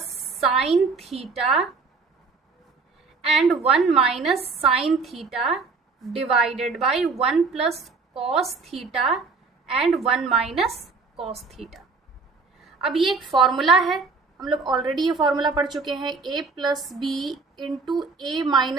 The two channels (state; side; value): quieter; left; 4.4 dB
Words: sine theta and 1 minus sine theta divided by 1 plus cos theta and 1 minus cos theta. अब ये एक फॉर्मूला है, हम लोग ऑलरेडी ये फॉर्मूला पढ़ चुके हैं, a plus b into a